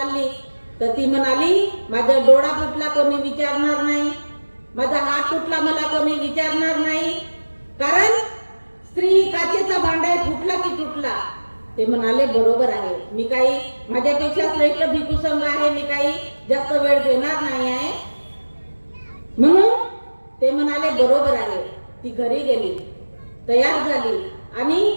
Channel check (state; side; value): inverted; both; correlation -1.00